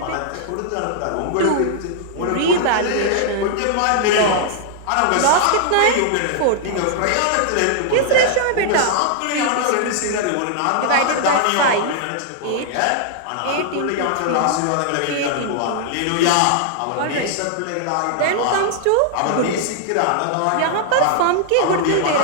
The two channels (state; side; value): different; both; correlation -0.01